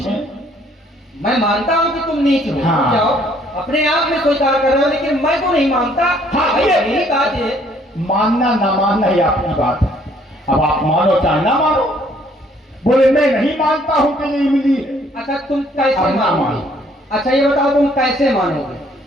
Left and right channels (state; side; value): normal; both; correlation 0.63